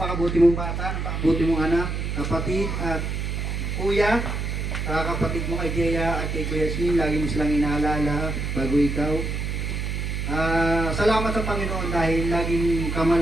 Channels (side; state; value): right; noise; hum, 2 dB below the sound